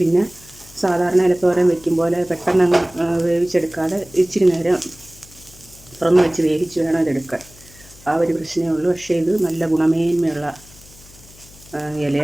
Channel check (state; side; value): noise; left; hum, 23 dB below the sound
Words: സാധാരണ ഇലത്തോരൻ വെക്കും പോലെ പെട്ടെന്ന് വേവിച്ചെടുക്കാതെ ഇച്ചിരി നേരം തുറന്ന് വെച്ച് വേവിച്ച് വേണം ഇതെടുക്കാൻ. ആ ഒരു പ്രശ്നമേ ഉള്ളൂ. പക്ഷേ ഇത് നല്ല ഗുണമേന്മയുള്ള